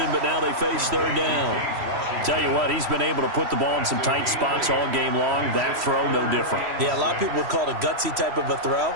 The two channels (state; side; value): late; left; 3.1 ms